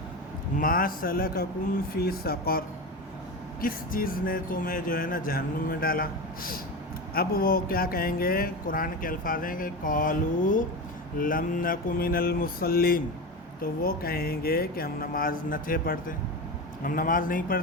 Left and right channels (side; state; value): both; normal; correlation 0.23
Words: मा सलककुम फ़ी सक़र, किस चीज़ ने तुम्हें जो है ना जहन्नुम में डाला। अब वो क्या कहेंगे? कुरान के अल्फाज हैं कि क़ालू लम नकु मिनल मुसल्लीन, तो वो कहेंगे कि हम नमाज न थे पढ़ते, हम नमाज नहीं